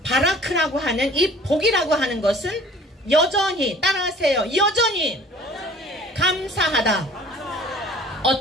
바라크라고 하는 이 복이라고 하는 것은 여전히, 따라하세요. 여전히 감사하다.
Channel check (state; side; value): normal; both; correlation 0.49